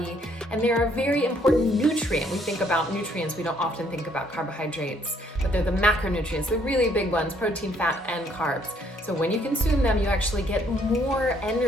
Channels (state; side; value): normal; both; correlation 0.66